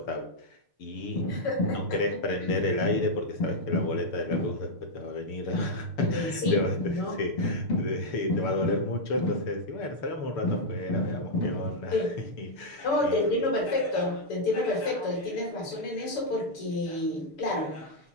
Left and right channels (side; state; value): right; late; 6.8 ms